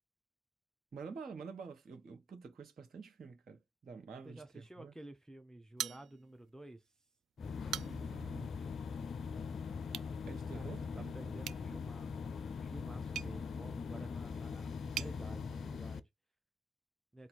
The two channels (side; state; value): both; normal; correlation 0.77